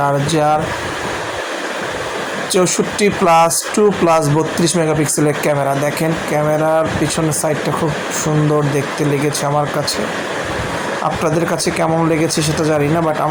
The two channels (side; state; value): both; identical; correlation 1.00